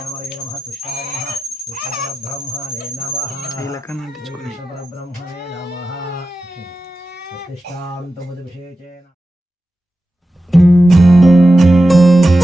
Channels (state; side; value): normal; both; correlation 0.93